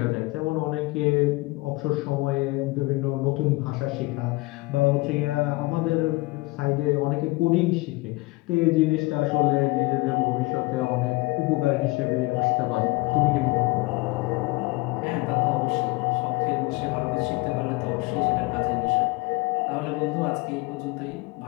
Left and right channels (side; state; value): right; quieter; 22.8 dB